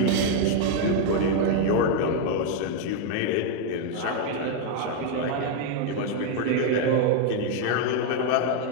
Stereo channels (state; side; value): different; both; correlation 0.01